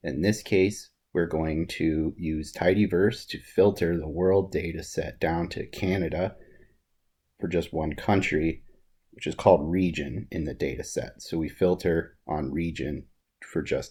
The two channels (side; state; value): both; identical; correlation 1.00